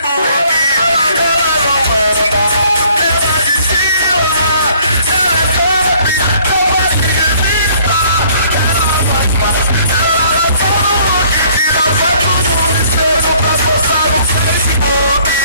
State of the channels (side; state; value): both; inverted; correlation -0.59